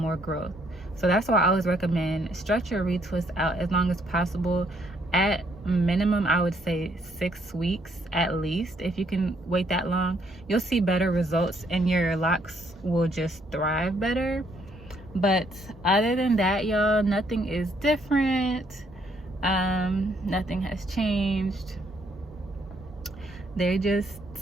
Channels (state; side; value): normal; both; correlation 0.70